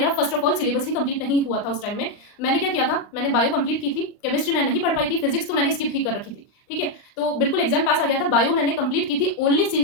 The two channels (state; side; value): late; right; 39 ms